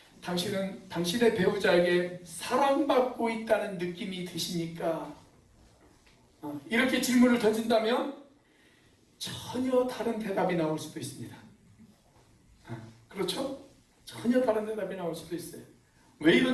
당신은 당신의 배우자에게 사랑받고 있다는 느낌이 드십니까? 이렇게 질문을 던진다면 전혀 다른 대답이 나올 수도 있습니다. 그렇죠? 전혀 다른 대답이 나올 수도 있어요. 왜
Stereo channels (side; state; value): both; identical; correlation 1.00